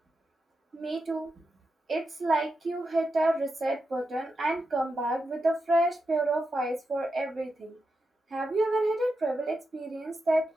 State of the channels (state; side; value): normal; both; correlation 0.87